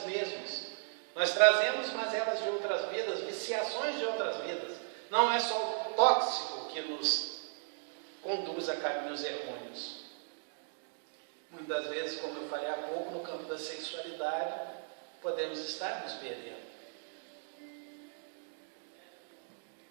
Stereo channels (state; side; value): silent; left; digital silence